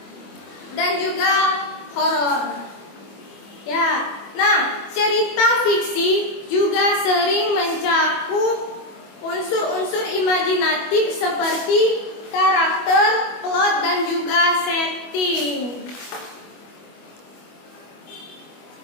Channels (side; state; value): right; late; 25 ms